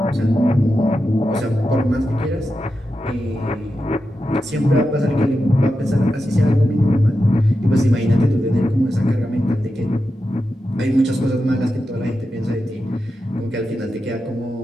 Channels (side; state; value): both; normal; correlation 0.89